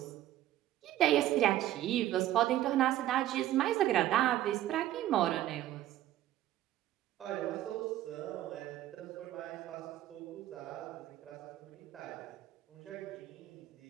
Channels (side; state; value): left; quieter; 13.6 dB